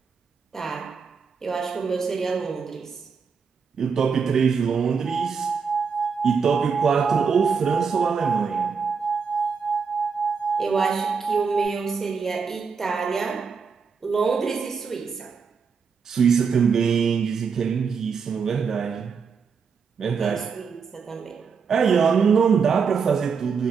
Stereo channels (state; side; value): quieter; left; 5.7 dB